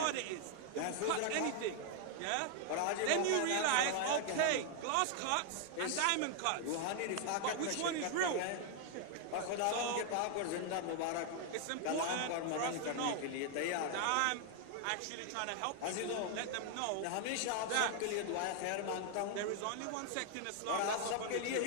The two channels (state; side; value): different; both; correlation 0.00